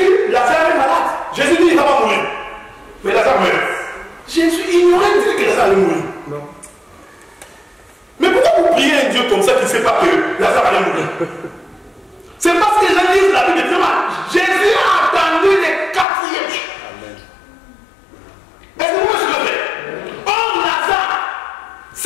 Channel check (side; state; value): right; drops out; at 16.1 s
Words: Lazare est malade. Jésus dit qu'il ne va pas mourir. Mais Lazare meurt. Jésus ignorait dit que Lazare allait mourir. Non. Mais pourquoi vous priez un Dieu comme ça qui ne sait pas que Lazare allait mourir? C'est parce que les gens